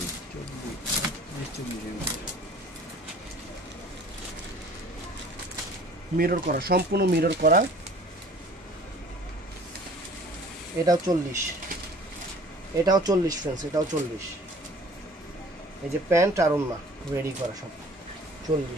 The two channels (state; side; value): normal; both; correlation 0.50